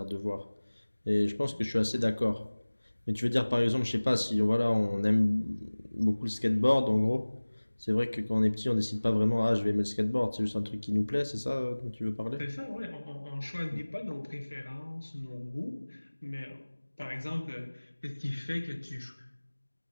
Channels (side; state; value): both; inverted; correlation -1.00